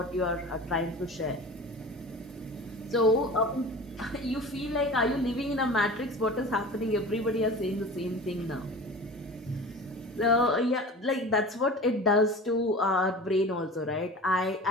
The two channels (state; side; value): normal; both; correlation 0.37